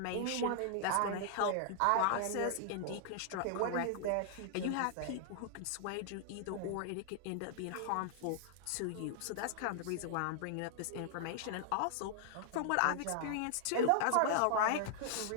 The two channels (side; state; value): both; different; correlation -0.01